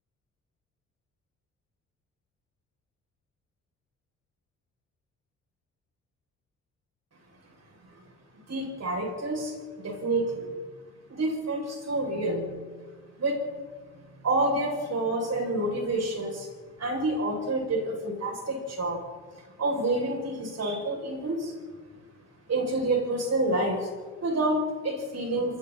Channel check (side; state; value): both; normal; correlation -0.06